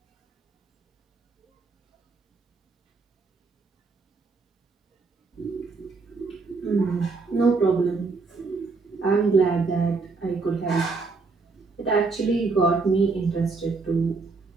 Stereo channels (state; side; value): quieter; left; 4.1 dB